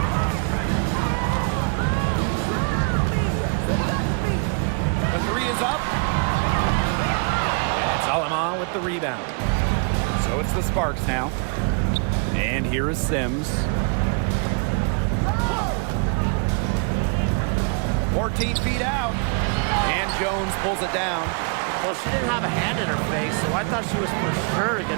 The three is up. And it's Alaman with the rebound. So it's the Sparks now. And here is Sims. 14 feet out. And Jones pulls it down. Well, she didn't have a hand in her face, so I thought she was for sure going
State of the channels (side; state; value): left; quieter; 39.6 dB